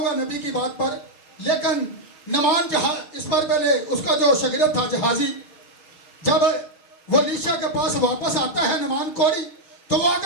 नबी की बात पर, लेकिन नुमान जहाज, इस पर पहले उसका जो शागिर्द था जहाजी, जब वो अलीशा के पास वापस आता है नुमान कोड़ी, तो वो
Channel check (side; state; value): right; late; 6.4 ms